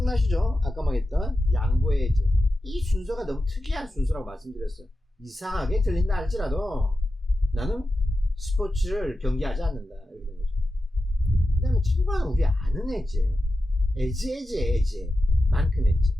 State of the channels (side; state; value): both; normal; correlation 0.91